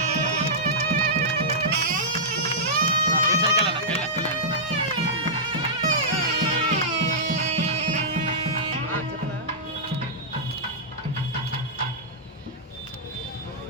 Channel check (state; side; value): normal; both; correlation -0.12